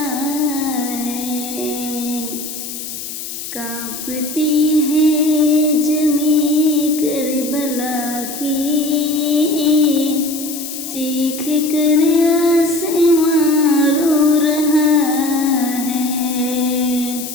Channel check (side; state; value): left; noise; hiss, 9 dB below the sound